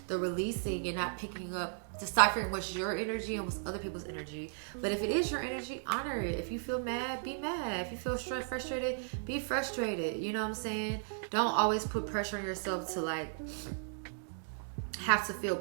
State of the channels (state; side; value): silent; left; digital silence